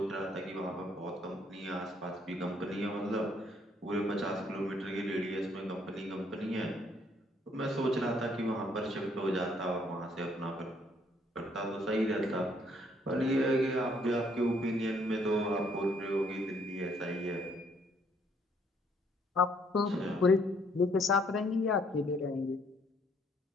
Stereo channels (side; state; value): both; normal; correlation 0.66